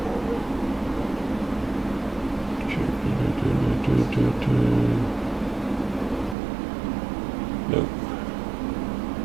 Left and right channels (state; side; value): drops out; left; at 6.4 s